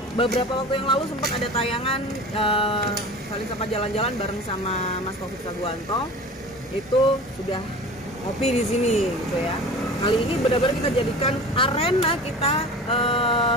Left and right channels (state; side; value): normal; both; correlation 0.37